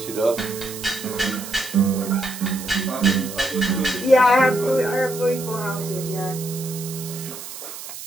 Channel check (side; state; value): right; noise; hiss, 11 dB below the sound